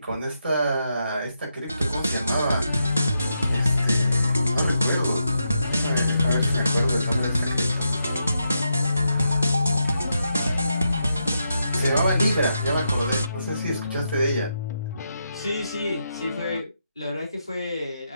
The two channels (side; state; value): both; inverted; correlation -0.83